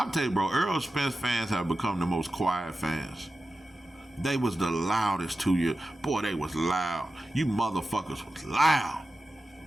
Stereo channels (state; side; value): normal; both; correlation 0.93